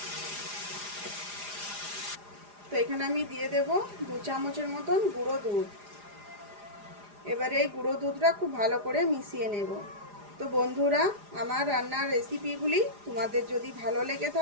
তো এখানে আমি দিয়ে দেব 2 চামচের মতন গুঁড়ো দুধ। এবারে এই গুঁড়ো দুধটা খুব ভালো করে মিশিয়ে নেব। তো বন্ধুরা, আমার রান্নার রেসিপিগুলি তোমাদের যদি ভালো লেগে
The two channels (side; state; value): left; late; 4.9 ms